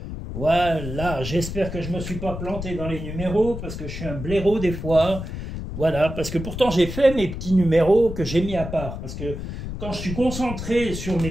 Voilà, j'espère que je ne me suis pas planté dans les numéros, parce que je suis un blaireau des fois. Voilà, parce que pourtant j'ai fait mes petits numéros que j'ai mis à part. Parce que quand je suis concentré sur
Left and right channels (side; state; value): left; noise; rumble, 7 dB below the sound